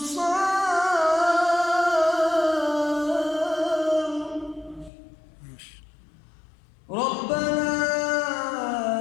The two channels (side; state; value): right; drops out; at 4.9 s